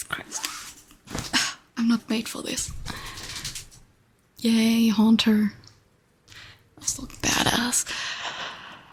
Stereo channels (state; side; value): identical; both; correlation 1.00